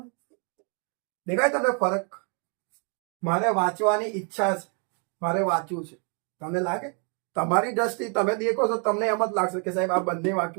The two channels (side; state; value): left; quieter; 38.8 dB